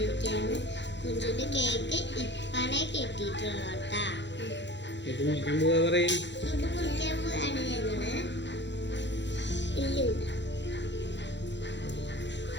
കുഞ്ചിന്റെ കേക്ക് ഇപ്പനെ കെട്ടിയിട്ടുള്ളൂ കേട്ടാ. ഇത് മുറിക്കാൻ പോവാണ് ഞങ്ങള്.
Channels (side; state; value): right; late; 0.52 ms